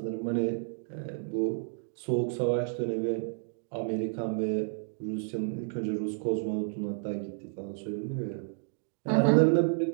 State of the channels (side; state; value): left; silent; digital silence